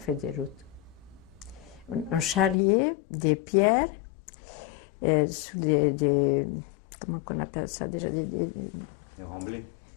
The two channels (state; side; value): drops out; right; at 2.6 s